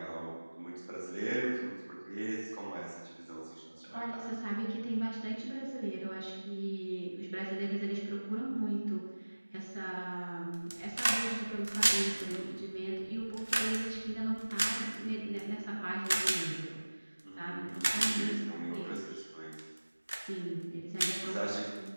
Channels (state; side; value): inverted; both; correlation -1.00